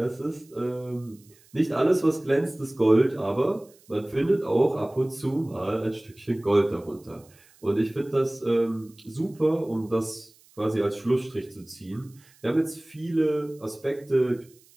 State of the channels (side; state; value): right; noise; hiss, 29 dB below the sound